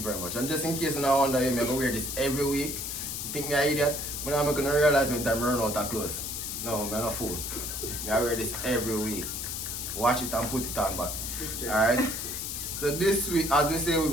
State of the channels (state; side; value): noise; left; hiss, 4 dB below the sound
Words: very much. And just in case you now wonder, I'm gonna wear this every week. You think me an idiot? But I'm gonna realize when time run out of clothes. No, I'm not a fool. I wear this every week. Watch it and put it on back. Alright? So this week, as we say, we're